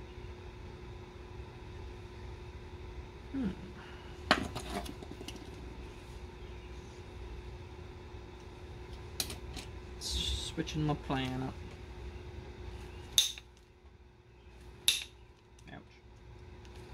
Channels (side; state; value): both; identical; correlation 1.00